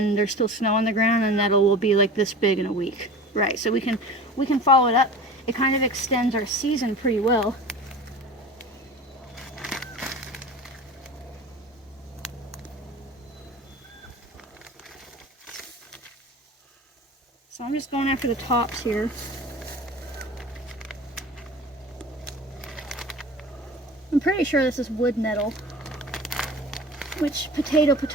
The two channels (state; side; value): normal; both; correlation 0.37